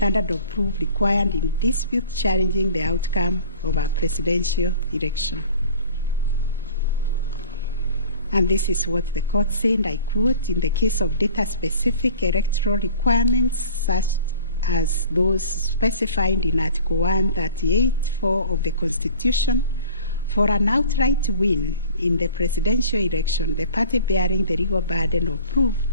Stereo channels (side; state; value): both; inverted; correlation -0.44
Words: of proof required in disputes challenging the outcome of a presidential election. And this is what the court said, I quote, in the case of data-specific electoral requirements such as those specified in Article 138(4) of the Constitution, for an outright win in the presidential election, the party bearing the legal burden of proof